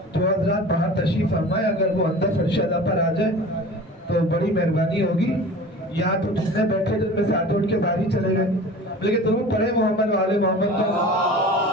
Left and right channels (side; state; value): both; normal; correlation 0.38